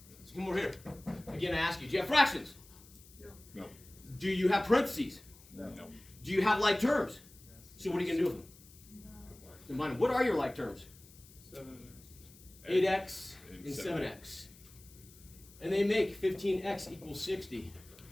come over here. Again, I ask you, do you have fractions? No. Do you have parentheses? No. Do you have like terms? So what are you gonna do with them? Combine them. What are your like terms? 8x and 7x. And they make 15x equals 60.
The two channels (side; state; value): left; noise; hiss, 23 dB below the sound